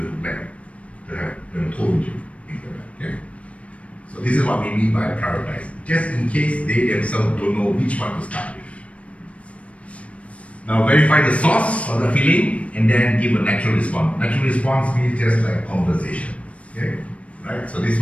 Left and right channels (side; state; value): right; late; 0.064 ms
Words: like to have them told you? Things like that, okay? So this is what we mean by prioritize. Just in case they themselves don't know which one to start with. Now verify the source of the feeling and then give a natural response. Natural response means just like conversation. Okay? Right? So this